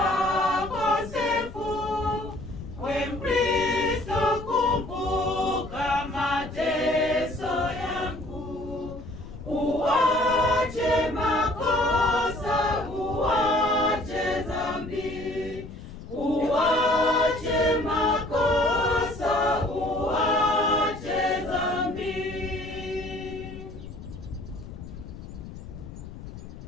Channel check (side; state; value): left; noise; rumble, 13 dB below the sound